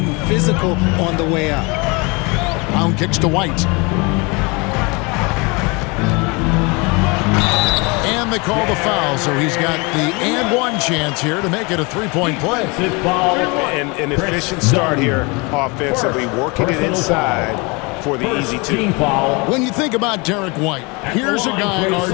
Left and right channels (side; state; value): right; quieter; 28.3 dB